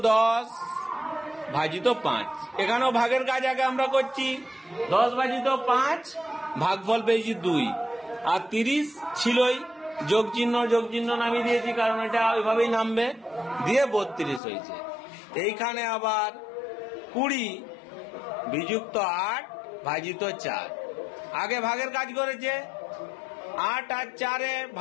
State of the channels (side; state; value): right; drops out; at 14.4 s